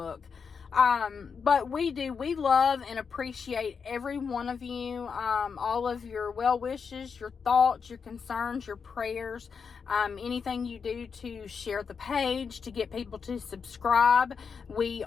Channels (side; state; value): right; quieter; 5.9 dB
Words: But we love and appreciate every one of you, all of your well wishes, your thoughts, your concerns, your prayers, anything you do to share the page, to get people to subscribe. We